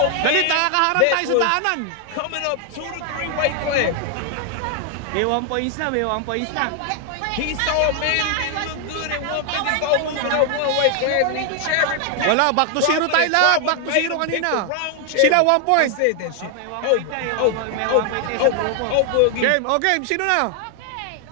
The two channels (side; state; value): both; different; correlation 0.00